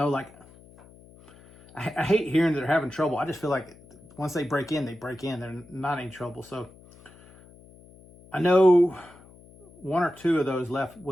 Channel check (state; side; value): noise; left; hum, 24 dB below the sound